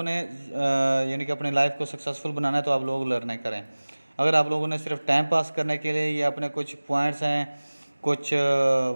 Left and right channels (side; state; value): both; inverted; correlation -1.00